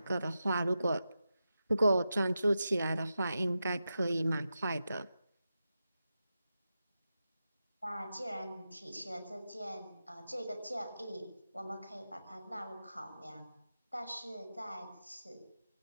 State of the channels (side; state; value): both; inverted; correlation -0.90